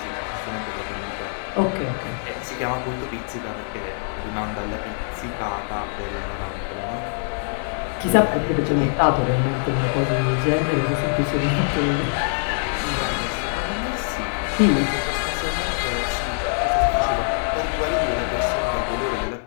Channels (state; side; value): silent; right; 62 dB below the other